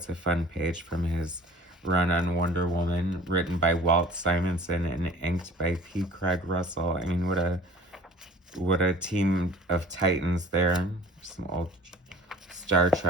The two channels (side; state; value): both; normal; correlation 0.46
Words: a fun page from his run on Wonder Woman, written by Walt Simonson and inked by P. Craig Russell. I mean, what a team of titans there. Some old Star